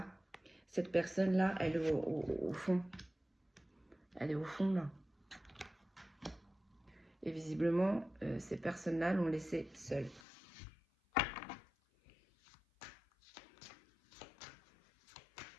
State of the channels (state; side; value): drops out; right; at 10.2 s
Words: cette personne-là, elle est au fond. Elle est au fond, là. Et visiblement, ces personnes-là l'ont laissée seule.